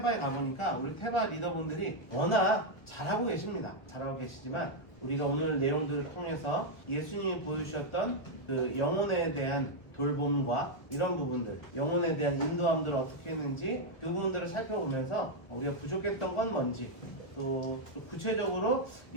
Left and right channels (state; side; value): late; right; 1.2 ms